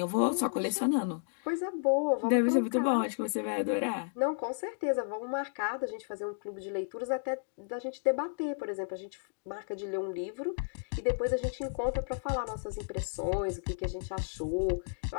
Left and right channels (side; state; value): right; silent; digital silence